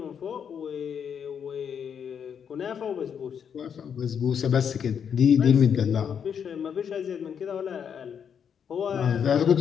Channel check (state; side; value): quieter; right; 7.6 dB